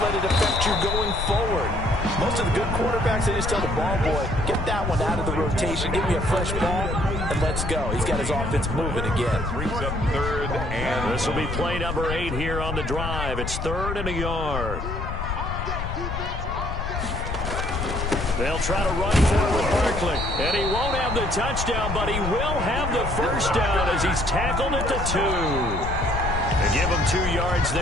let it affect you going forward. Most of the good quarterbacks, they just tell the ball boy, get that one out of the rotation, give me a fresh ball, and let's go. He's got his offense moving again. Brings up 3rd, and this will be play number 8 here on the drive. It's 3rd and a yard. They'll try to run for it with Barkley. And he won't have the touchdown, but he will have the 1st down as he's tackled at the 2. And give him 32 yards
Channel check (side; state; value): left; noise; rumble, 4 dB below the sound